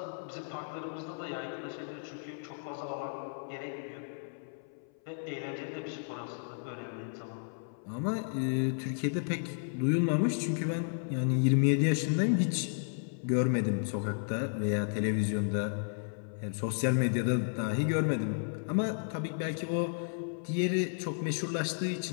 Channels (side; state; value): right; silent; 56 dB below the other